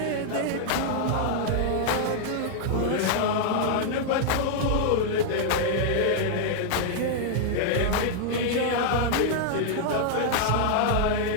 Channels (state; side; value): different; both; correlation -0.01